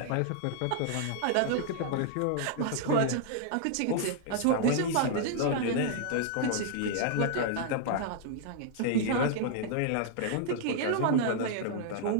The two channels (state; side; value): different; both; correlation -0.01